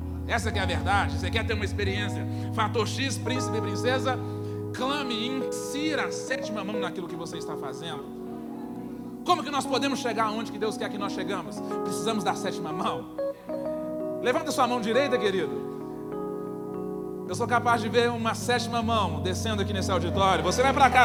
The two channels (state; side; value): identical; both; correlation 1.00